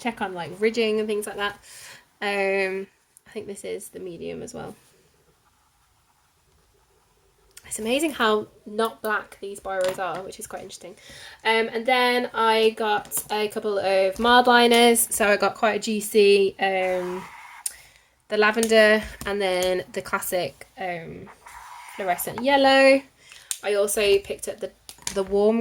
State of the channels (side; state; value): both; identical; correlation 1.00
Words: on like ridging and things like that. I think this is the medium as well. It's amazing how not black these biros are, which is quite interesting. And then I got a couple of mild liners. So I got quite a juicy, the lavender, and then the classic fluorescent yellow. I also picked up the warm